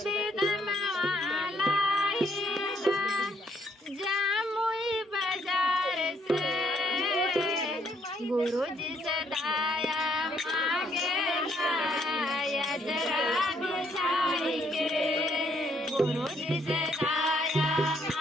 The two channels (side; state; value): both; normal; correlation 0.70